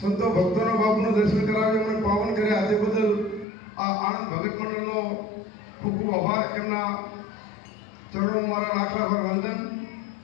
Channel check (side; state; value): right; drops out; at 3.5 s